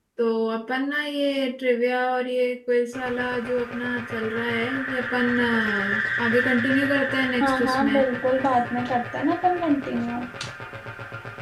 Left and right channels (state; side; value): identical; both; correlation 1.00